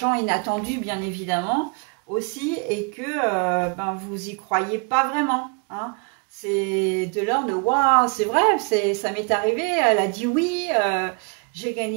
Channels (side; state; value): left; quieter; 35.0 dB